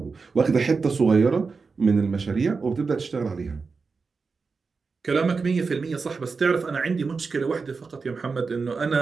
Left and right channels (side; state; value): left; quieter; 4.7 dB